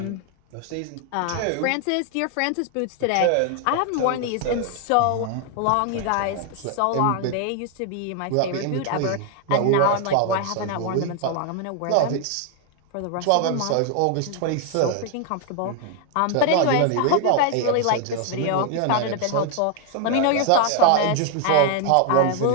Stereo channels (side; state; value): both; different; correlation 0.00